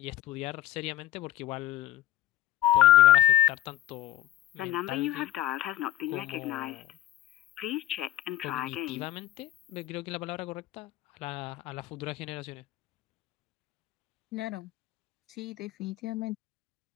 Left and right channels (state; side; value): quieter; right; 14.1 dB